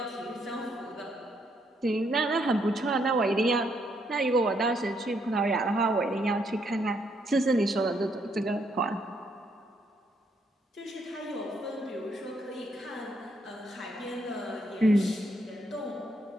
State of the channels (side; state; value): both; normal; correlation 0.74